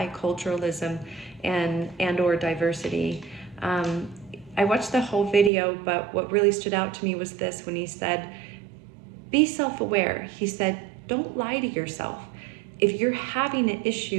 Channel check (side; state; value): left; drops out; at 5.5 s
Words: and or diversity. I watched the whole video, but what really stood out to me was this when he said, be self-aware. He said, don't lie to yourself. If you're having an